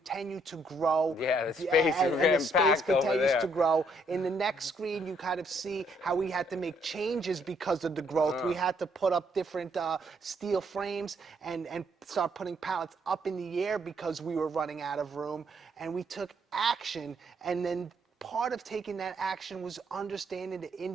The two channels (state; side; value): normal; both; correlation 0.70